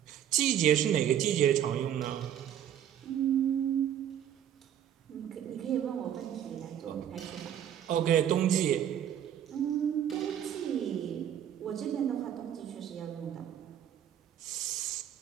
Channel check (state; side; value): quieter; left; 10.2 dB